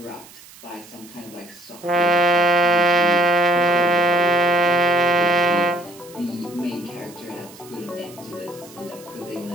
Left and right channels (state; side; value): noise; right; hiss, 21 dB below the sound